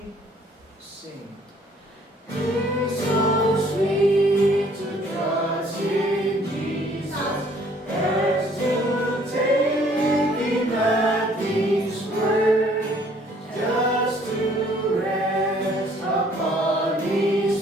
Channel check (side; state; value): both; normal; correlation 0.60